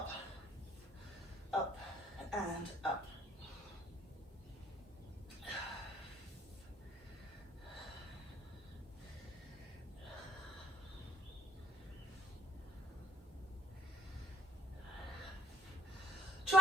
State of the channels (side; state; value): both; normal; correlation 0.63